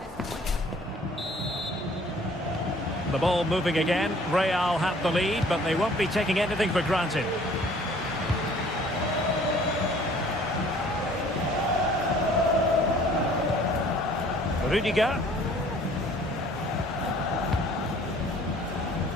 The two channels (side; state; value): both; normal; correlation 0.54